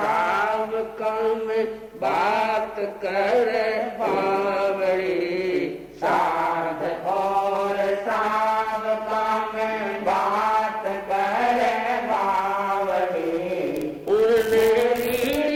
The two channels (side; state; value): both; identical; correlation 1.00